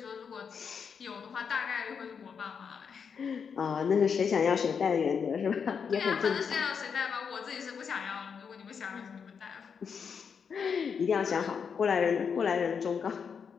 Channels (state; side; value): quieter; right; 6.5 dB